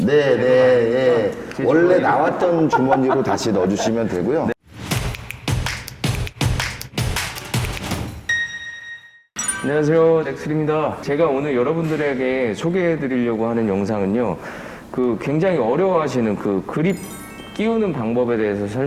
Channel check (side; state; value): both; identical; correlation 1.00